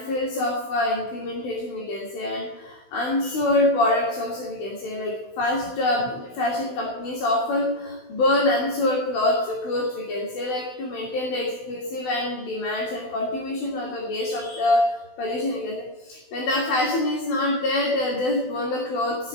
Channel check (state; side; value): late; right; 16 ms